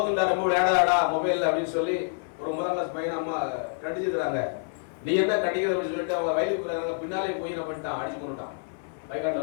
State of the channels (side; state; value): right; silent; 60 dB below the other